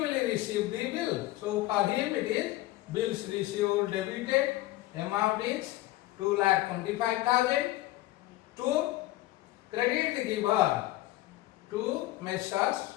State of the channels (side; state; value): right; quieter; 17.0 dB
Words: receive the bill. So for him it is bills received debited, amount is 2,25,000 to credit the giver to Messrs.